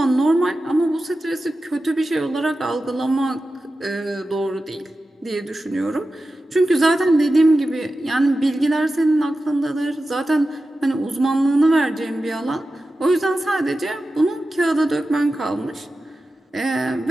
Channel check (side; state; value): both; normal; correlation 0.93